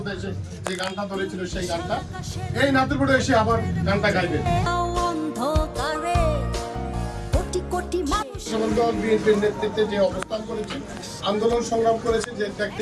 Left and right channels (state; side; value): identical; both; correlation 1.00